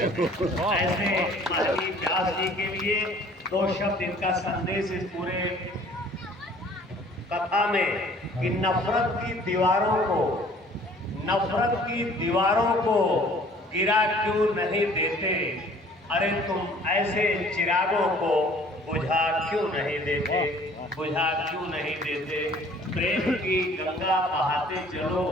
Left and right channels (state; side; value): normal; both; correlation 0.53